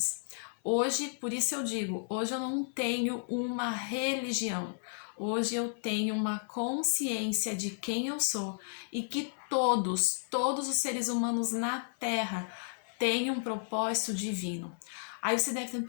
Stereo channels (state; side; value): silent; right; 56 dB below the other